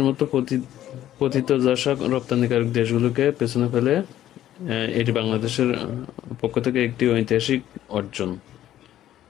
মতো পতিতদশা রপ্তানিকারক দেশগুলোকে পেছনে ফেলে এটি বাংলাদেশের পক্ষ থেকে একটি ঐতিহাসিক অর্জন।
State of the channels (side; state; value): right; quieter; 12.5 dB